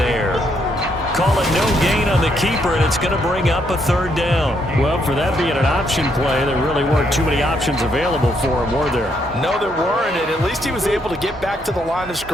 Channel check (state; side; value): normal; both; correlation 0.74